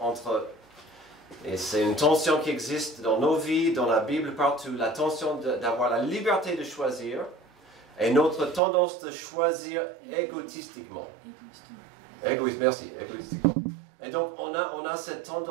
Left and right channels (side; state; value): left; drops out; at 8.6 s